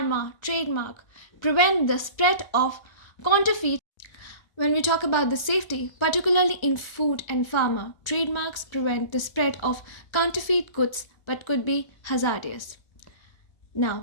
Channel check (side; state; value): right; late; 1.3 ms